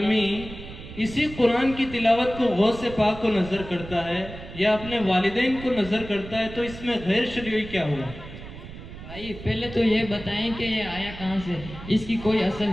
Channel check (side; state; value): right; noise; rumble, 13 dB below the sound